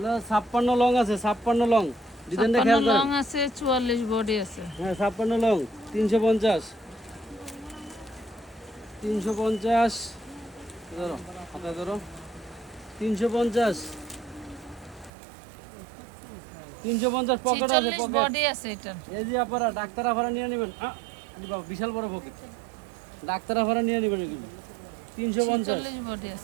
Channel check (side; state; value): left; drops out; at 15.1 s